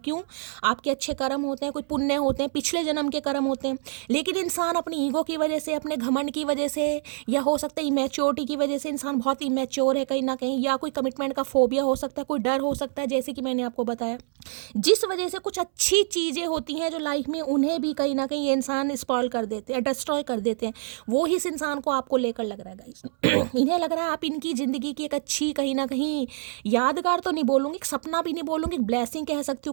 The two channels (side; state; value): left; silent; 61 dB below the other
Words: आपके अच्छे कर्म होते हैं, कोई पुण्य होते हैं, पिछले जन्म के कर्म होते हैं। लेकिन इंसान अपनी ईगो की वजह से, अपने घमंड की वजह से, या हो सकता है इमेच्योरिटी की वजह से, इंसान बहुत इमेच्योर है कहीं ना कहीं, या कोई कमिटमेंट का फोबिया हो सकता है, कोई डर हो सकता है, जैसे कि मैंने आपको बताया, जिस वजह से कुछ अच्छी चीज़ें होती हैं जो लाइफ में, उन्हें भी कहीं ना कहीं ये इंसान स्पॉइल कर देते हैं, डिस्ट्रॉय कर देते हैं। वो ही इस इंसान को आपको लेकर लग रहा है गाइस। इन्हें लग रहा है आप इनकी ज़िंदगी की एक अच्छी, कहीं ना कहीं यादगार तो नहीं बोलूँगी, एक सपना भी नहीं बोलूँगी, एक ब्लेसिंग कह सकती हूँ